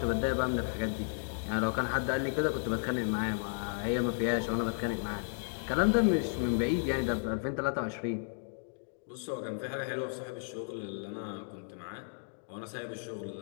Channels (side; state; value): right; silent; digital silence